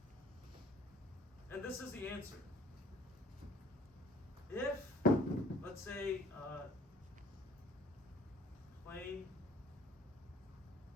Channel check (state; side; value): normal; both; correlation 0.54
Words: And this is the answer. If, let's say, plane